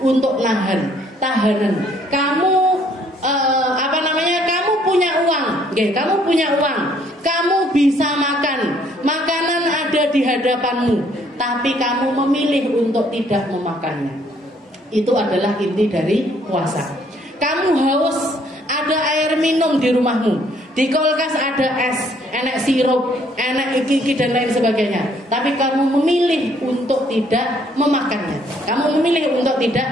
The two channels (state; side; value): normal; both; correlation 0.64